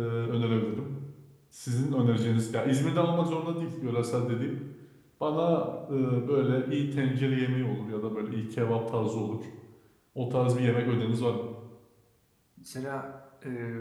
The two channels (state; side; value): identical; both; correlation 1.00